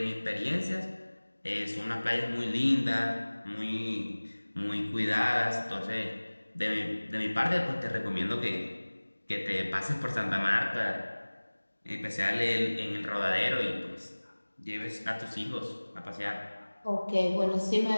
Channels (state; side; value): inverted; both; correlation -1.00